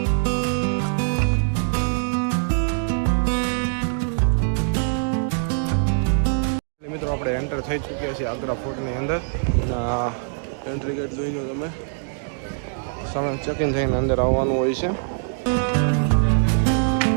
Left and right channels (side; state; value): left; silent; digital silence